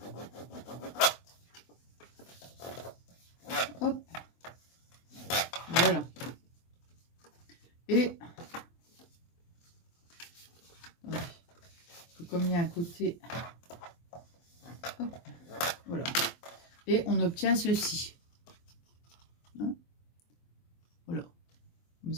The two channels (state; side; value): late; right; 23 ms